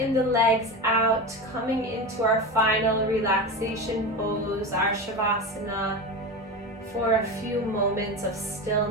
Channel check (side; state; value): both; normal; correlation 0.24